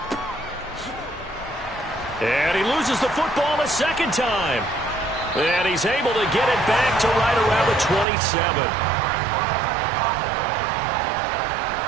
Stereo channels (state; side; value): drops out; left; at 8.1 s